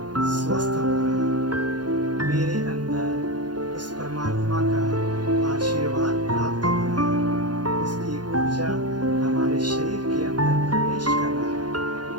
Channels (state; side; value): late; left; 0.70 ms